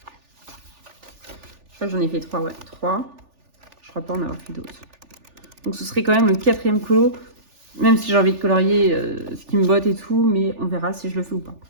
crois que j'en ai fait 3, ouais, 3. Je crois pas en avoir fait d'autres. Donc ce serait quand même le 4e colo, même si j'ai envie de colorier ce qui me botte et tout, mais on verra si je le fais ou pas.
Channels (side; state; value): left; late; 3.4 ms